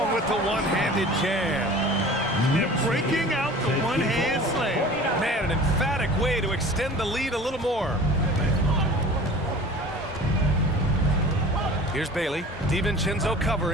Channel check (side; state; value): both; normal; correlation 0.42